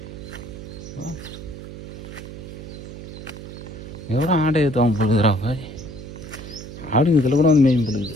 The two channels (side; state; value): right; noise; hum, 11 dB below the sound